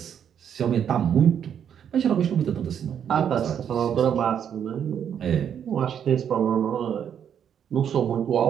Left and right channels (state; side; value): quieter; left; 8.6 dB